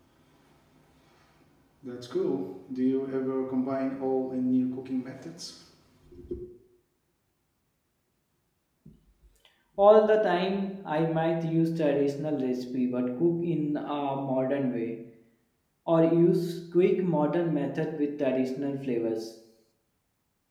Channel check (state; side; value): identical; both; correlation 1.00